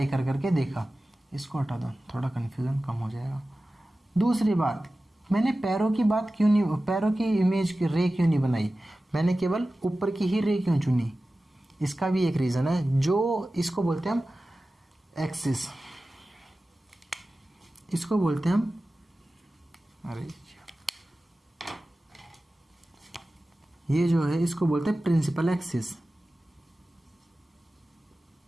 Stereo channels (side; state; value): both; normal; correlation 0.95